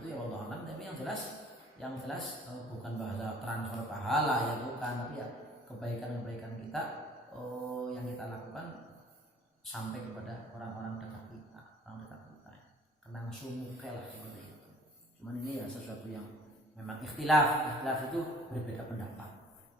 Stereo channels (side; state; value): both; normal; correlation 0.53